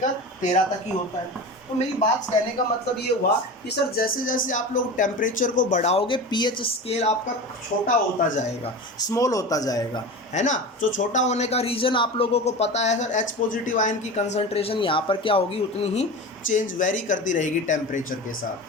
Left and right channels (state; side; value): normal; both; correlation 0.29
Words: 13 तक ही होता है। तो मेरी बात कहने का मतलब ये हुआ कि सर जैसे जैसे आप लोग टेम्परेचर को बढ़ाओगे पीएच स्केल आपका छोटा होता जाएगा, स्मॉल होता जाएगा, है ना। जो छोटा होने का रीज़न आप लोगों को पता है सर, H पॉजिटिव आयन की कंसंट्रेशन यहाँ पर क्या होगी? उतनी ही चेंज वेरी करती रहेगी टेम्परेचर के